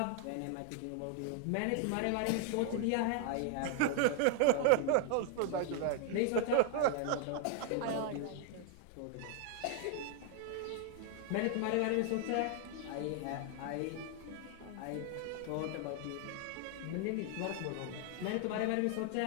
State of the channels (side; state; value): both; different; correlation 0.00